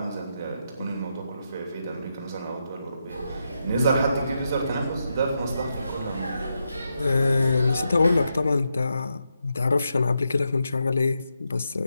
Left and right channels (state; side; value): inverted; both; correlation -0.84